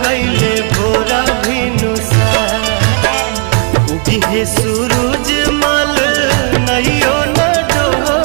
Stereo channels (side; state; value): left; quieter; 39.0 dB